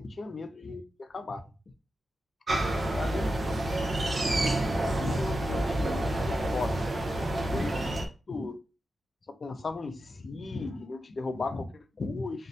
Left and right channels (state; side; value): normal; both; correlation 0.89